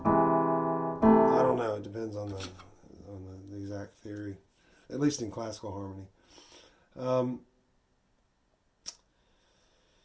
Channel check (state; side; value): identical; both; correlation 1.00